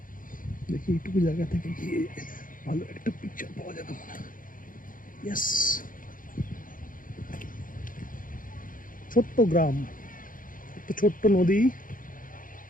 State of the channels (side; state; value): right; late; 0.40 ms